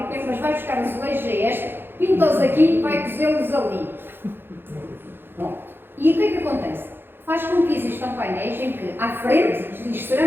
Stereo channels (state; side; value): late; left; 0.10 ms